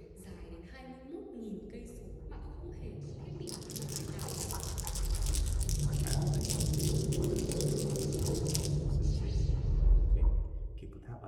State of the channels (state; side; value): identical; both; correlation 1.00